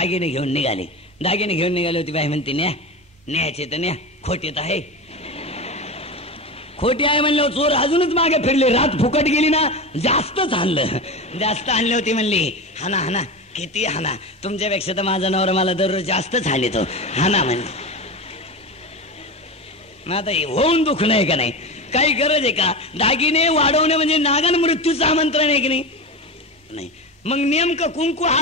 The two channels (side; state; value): both; normal; correlation 0.23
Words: घेऊन निघाले. दागिने घेऊन निघाले होती. बाई म्हणते, न्यायचे तर न्या, खोटी तर आहे. खोटी आहे म्हणलं. चोर अजूनच मागे फिरले. रात फुकट गेली ना, जास्तच हाणलं. जास्त हाणले होती म्हणली, हाना हाना किती हाना, तुमच्यापेक्षा तर माझा नवरा मला दररोज जास्तच हानितो, हाना म्हणले. आता होऊन दुख नाही का नाही, काही गरज आहे का. दागिने वाढवणे म्हणजे नागन मृत्यूचं आमंत्रण आहे की नाही. मग नेमकं कुंकू